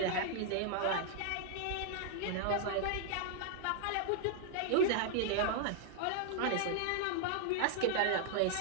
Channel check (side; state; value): both; different; correlation 0.00